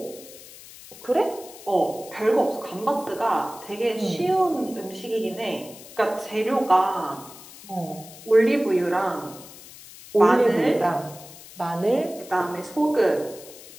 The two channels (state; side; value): noise; left; hiss, 18 dB below the sound